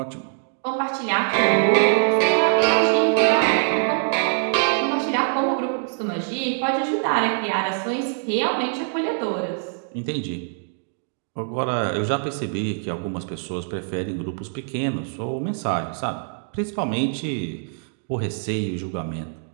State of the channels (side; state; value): left; silent; digital silence